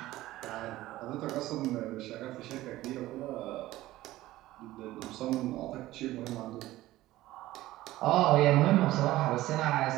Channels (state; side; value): quieter; left; 16.3 dB